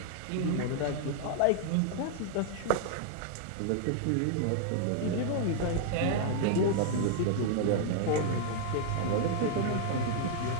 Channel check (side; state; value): both; different; correlation 0.00